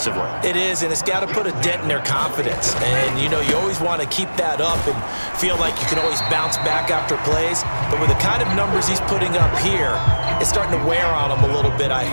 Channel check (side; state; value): both; inverted; correlation -1.00